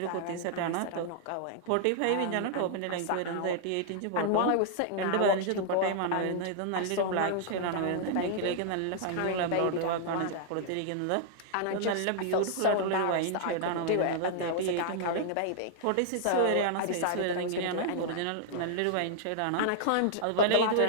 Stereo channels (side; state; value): both; different; correlation -0.01